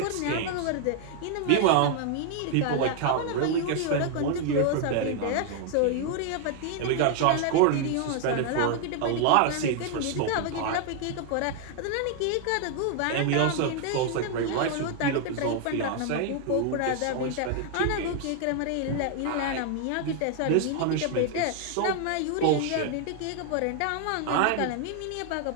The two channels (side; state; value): both; different; correlation 0.00